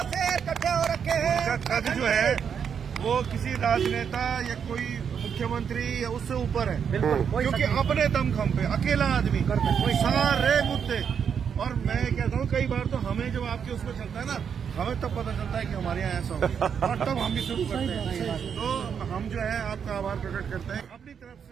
पद जो है वो किसी राजनेता या कोई मुख्यमंत्री या उससे ऊपर है, क्योंकि अपने दमखम पे अकेला आदमी सारे मुद्दे। और मैं कहता हूँ कई बार तो हमें जब आपके उसमें चलता है ना, हमें तब पता चलता है कि हमारे यहाँ ऐसा होगा, और तब हम भी शुरू करते हैं। तो हम जो है आपका आभार प्रकट करते हैं। अपनी तरफ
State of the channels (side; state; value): left; quieter; 7.3 dB